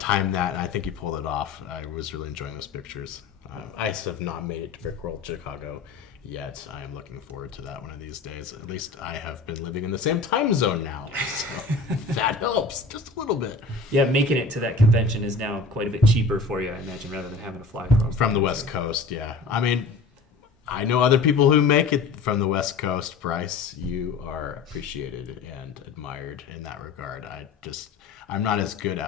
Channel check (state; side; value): quieter; right; 4.4 dB